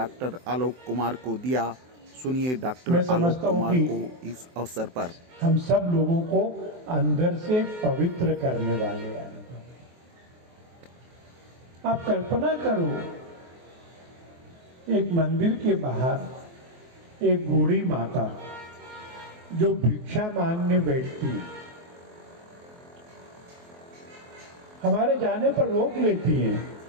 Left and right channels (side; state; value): left; late; 23 ms